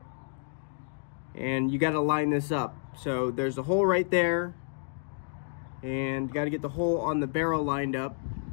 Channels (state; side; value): silent; right; digital silence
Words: And you gotta line this up. So there's a hole right there, and you gotta get the hole on the barrel lined up.